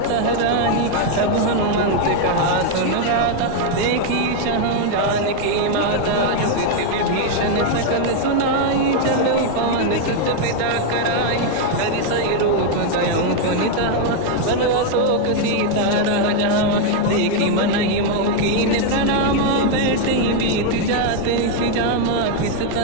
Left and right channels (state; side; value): different; both; correlation 0.01